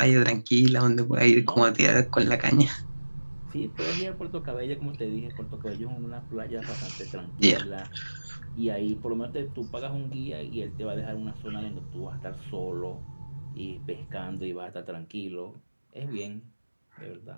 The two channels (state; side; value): inverted; both; correlation -1.00